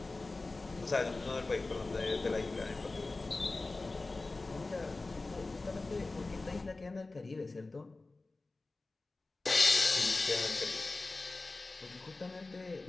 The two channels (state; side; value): quieter; right; 3.3 dB